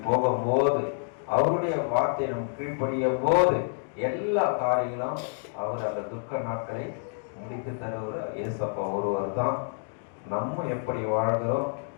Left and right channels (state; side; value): silent; right; 59 dB below the other